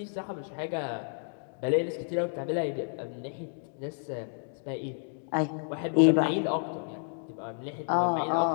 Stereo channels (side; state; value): right; silent; digital silence